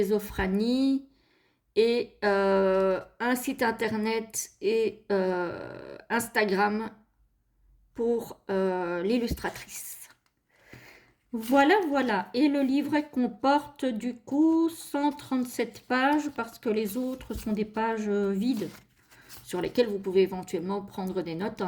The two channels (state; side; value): identical; both; correlation 1.00